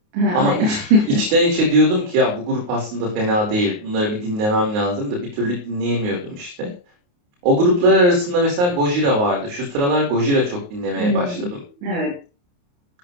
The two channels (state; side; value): late; left; 28 ms